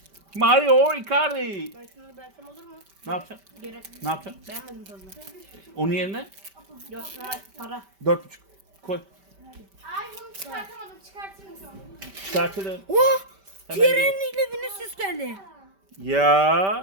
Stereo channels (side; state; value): left; late; 5.1 ms